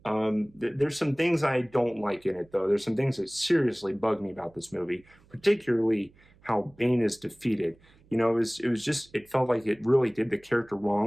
There's some things I don't like in it, though. There's some things that seriously bug me about this movie, particularly how Bane is defeated. You know, it felt like it really did the character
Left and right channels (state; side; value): noise; right; hum, 29 dB below the sound